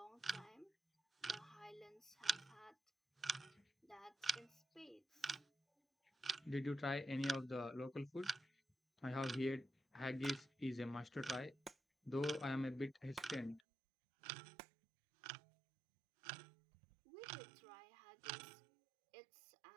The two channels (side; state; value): left; drops out; at 13.6 s